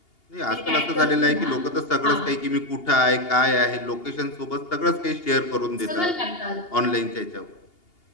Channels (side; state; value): right; late; 2.8 ms